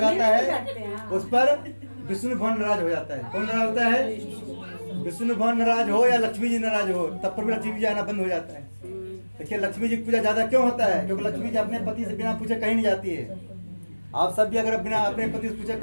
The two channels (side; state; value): both; inverted; correlation -1.00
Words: है उस पर विष्णु भगवान नाराज हो जाता है। कौन नाराज होता है? विष्णु भगवान नाराज हो या लक्ष्मी जी नाराज हो, तब पर भी लक्ष्मी जी आना बंद हो जाता है। देखिए, लक्ष्मी जी की पूजा ज्यादा क्यों होता है? क्योंकि लक्ष्मी जी अपने पति से बिना पूछे कहीं नहीं जाती है। आप सब भी अगर बिना अपने पति से पूछे